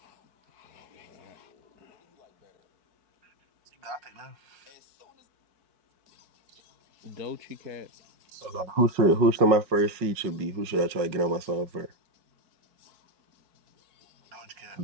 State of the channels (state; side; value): late; left; 5.4 ms